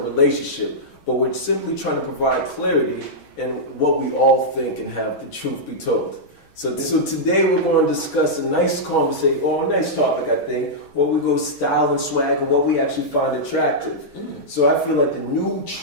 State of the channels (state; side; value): late; right; 6.2 ms